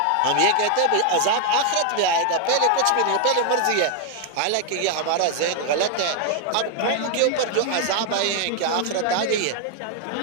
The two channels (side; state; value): both; different; correlation 0.00